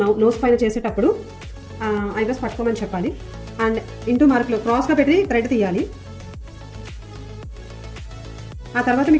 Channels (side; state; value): both; identical; correlation 1.00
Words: నోస్ పైన చేసేటప్పుడు ఐబ్రోస్ పట్టుకోమని చెప్పాలి. అండ్ ఇంటూ మార్క్లో క్రాస్గా పెట్టి థ్రెడ్ తీయాలి. ఆ తర్వాత